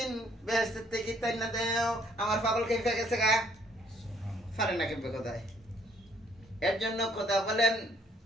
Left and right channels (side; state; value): both; normal; correlation 0.64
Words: বেহেশত থেকে তাই না দেও। আমার পাগল কেঁপে গেছে গা, পারে না কেঁপে কোথায়। এর জন্য কথা বলেন,